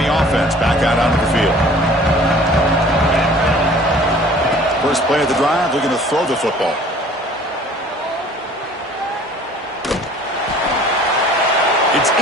offense back out onto the field. First play of the drive, they're going to throw the football. It's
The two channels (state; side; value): normal; both; correlation 0.50